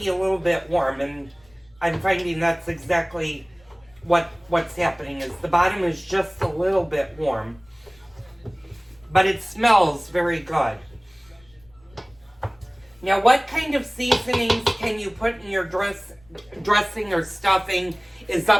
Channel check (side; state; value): left; noise; rumble, 30 dB below the sound